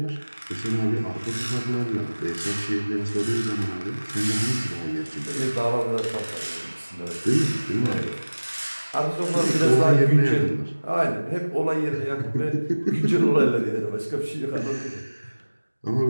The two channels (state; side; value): inverted; both; correlation -1.00